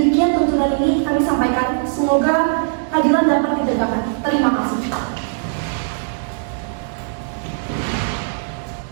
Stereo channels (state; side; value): silent; left; digital silence